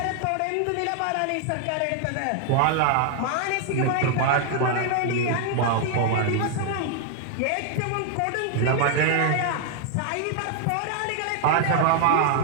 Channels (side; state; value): both; different; correlation 0.00